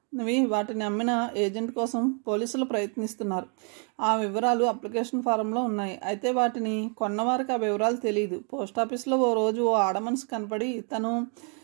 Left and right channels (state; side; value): quieter; left; 38.8 dB